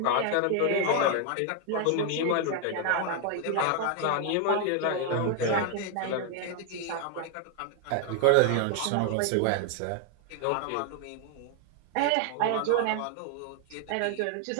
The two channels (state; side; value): different; both; correlation 0.00